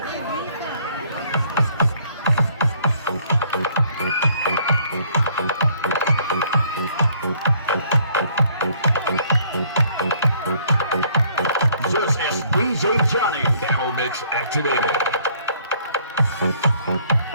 DJ Johnny, Camel Mix activated.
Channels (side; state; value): both; inverted; correlation -0.62